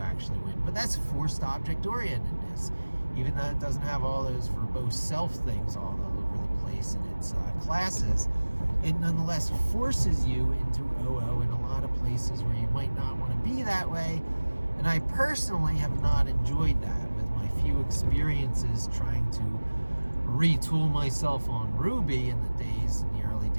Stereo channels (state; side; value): inverted; both; correlation -1.00